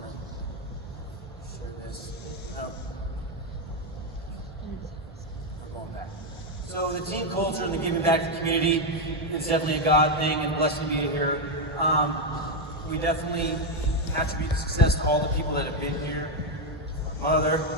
to share this. No. I'm going back. So the team culture and the giving back to the community, it's definitely a God thing, and blessed to be here. We definitely attribute the success to all the people that have been here. My mother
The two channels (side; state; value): both; normal; correlation 0.05